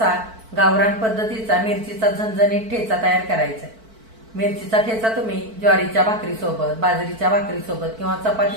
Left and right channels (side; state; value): left; late; 4.5 ms